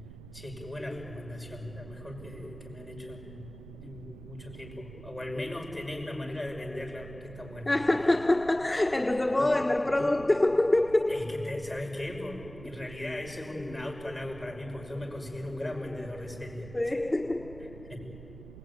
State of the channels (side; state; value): right; noise; rumble, 15 dB below the sound